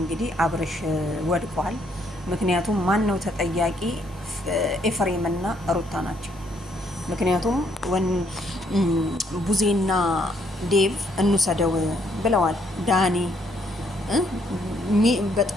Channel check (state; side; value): normal; both; correlation 0.70